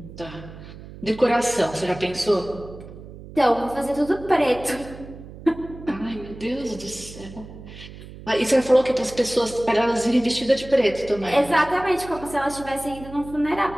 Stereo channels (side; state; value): right; noise; hum, 15 dB below the sound